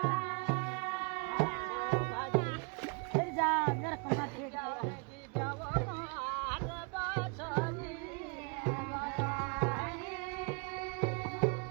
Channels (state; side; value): quieter; left; 34.6 dB